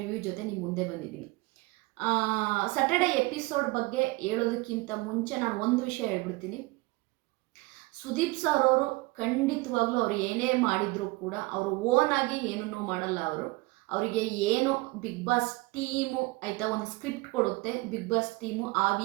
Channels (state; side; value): quieter; left; 23.5 dB